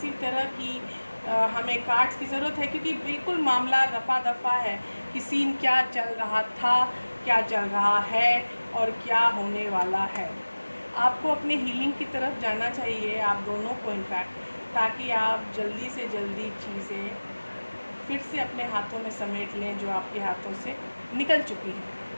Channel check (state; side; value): inverted; both; correlation -1.00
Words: तरह की हमें कार्ड्स की ज़रूरत है, क्योंकि बिल्कुल मामला रफा दफा है कि सीन क्या चल रहा था, क्या चल रहा है और क्या होने वाला है। आपको अपने हीलिंग की तरफ जाना चाहिए, आप दोनों को इनफैक्ट, ताकि आप जल्दी से जल्दी चीज़ें फिर से अपने हाथों में समेट लें जो आपके हाथों से निकल चुकी है।